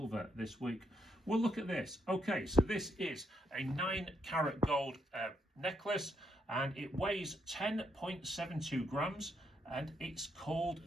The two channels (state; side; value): normal; both; correlation 0.76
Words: this week. We'll look at this. Okay, so this is a 9-carat gold necklace, and it weighs 10.72 grams, and